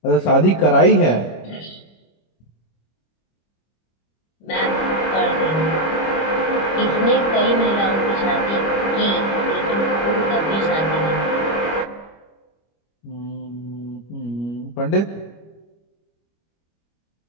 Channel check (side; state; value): right; late; 25 ms